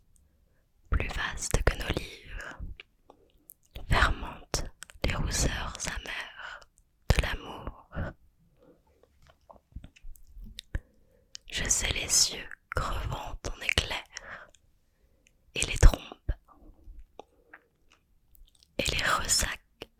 plus vaste que nos livres, fermentent les rousseurs amères de l'amour. Je sais les cieux crevant ton éclair, et les trompes, et les ressacs,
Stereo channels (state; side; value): identical; both; correlation 1.00